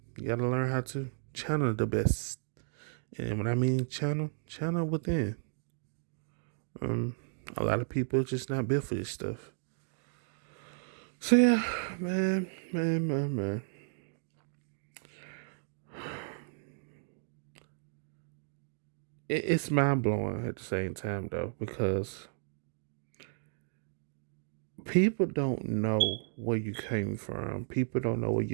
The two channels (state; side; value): silent; left; digital silence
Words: You got to learn how to channel the best. And when I mean channel within. Um, a lot of people just not built for this stuff. So yeah, man. It's mind blowing at the same time though, because people don't know where you came from. People don't know what